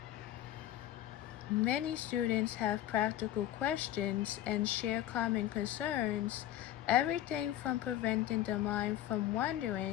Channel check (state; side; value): quieter; right; 12.9 dB